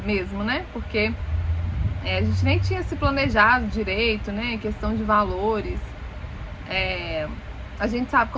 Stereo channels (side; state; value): both; identical; correlation 1.00